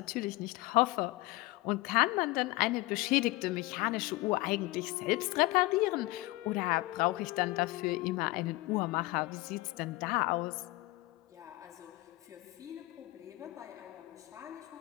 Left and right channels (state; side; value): quieter; right; 20.4 dB